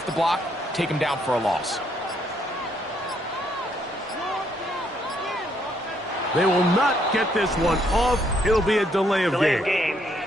the block, take him down for a loss. They will not get this one off. It'll be a delay of game.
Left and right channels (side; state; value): both; normal; correlation 0.72